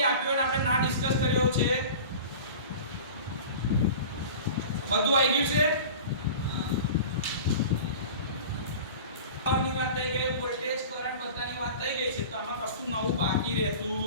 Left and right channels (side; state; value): both; inverted; correlation -0.37